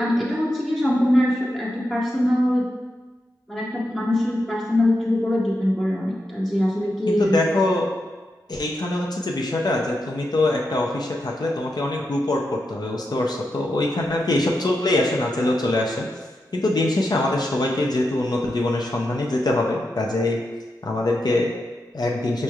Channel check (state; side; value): normal; both; correlation 0.86